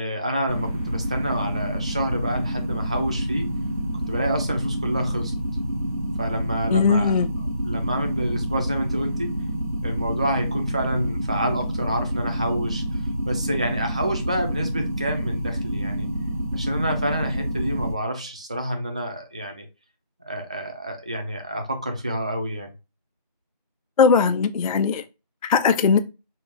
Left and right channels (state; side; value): inverted; both; correlation -0.63